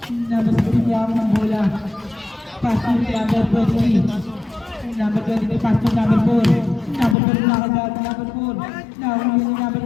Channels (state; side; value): drops out; right; at 7.2 s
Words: Number 15 yung ng bola. Passing number 23. Number 23. Passing number 4. Number 4 nakagawad ng number 4. Nahuli yung